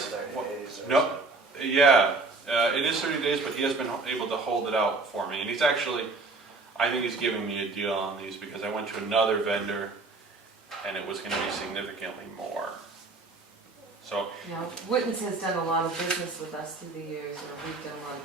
30 days or No, yeah, it is 30 days, but he has been able to hold it out for me. And he's actually, I think he's giving me a deal on these because I went to another vendor and it was going to be significantly more. So, Yeah, Witten's has done a lot of business with us through the years, or we've done a lot of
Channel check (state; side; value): quieter; left; 3.7 dB